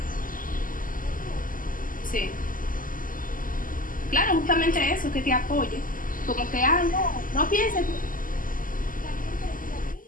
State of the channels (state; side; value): late; right; 0.40 ms